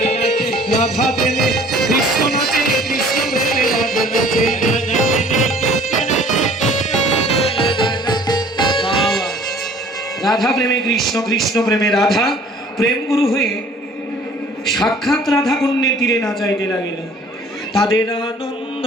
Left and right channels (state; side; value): normal; both; correlation 0.52